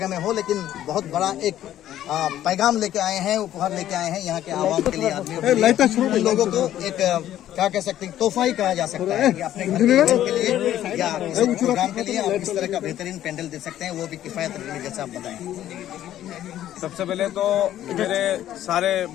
में हो, लेकिन बहुत बड़ा एक पैगाम लेके आए हैं, उपहार लेके आए हैं यहाँ के आवाम के लिए, आदमियों के लिए, लोगों को एक क्या कह सकते हैं, तोहफा ही कहा जा सकता है कि अपने घर के लिए या प्रोग्राम के लिए आप इस तरह का बेहतरीन पेंडल दे सकते हैं, वो भी किफायत रखने जैसा आप बताएं। सबसे पहले तो मेरे सारे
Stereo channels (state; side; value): quieter; right; 12.2 dB